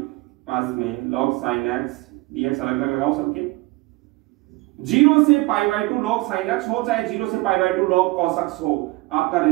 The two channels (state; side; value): quieter; left; 22.0 dB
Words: पास में log sin x dx अलग अलग लगाओ सबके। 0 से पाई बाय 2 log sin x हो चाहे 0 से पाई बाय 2 log cos x हो, आपका